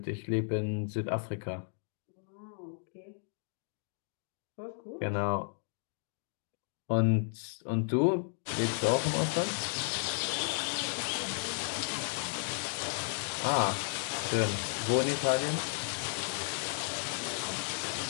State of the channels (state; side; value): silent; right; digital silence